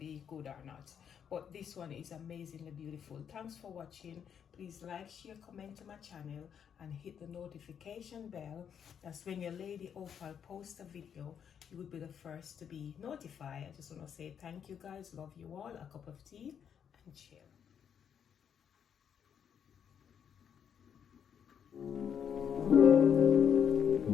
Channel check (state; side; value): quieter; right; 8.1 dB